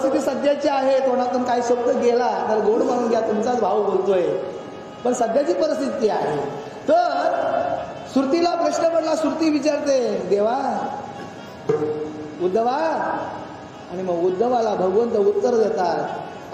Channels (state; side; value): identical; both; correlation 1.00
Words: सध्याची आहे. तोंडातून काही शब्द गेला तर गोड म्हणून घ्या, तुमचाच भाऊ बोलतोय. पण सध्याची परिस्थिती आहे. तर श्रुतीला प्रश्न पडला. श्रुती विचारते, देवा उद्धवा, आणि मग उद्धवाला भगवंत उत्तर